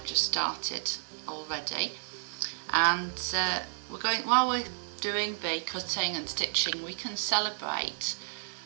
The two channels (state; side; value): silent; left; digital silence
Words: just started already, and while we're doing the cutting and stitching, we can celebrate